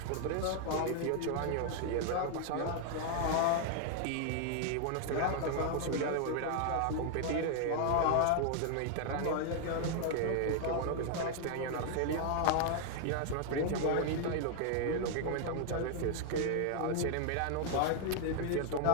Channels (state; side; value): different; both; correlation 0.00